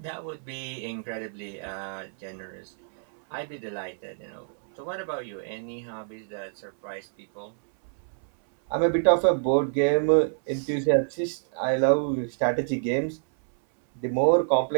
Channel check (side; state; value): left; silent; 60 dB below the other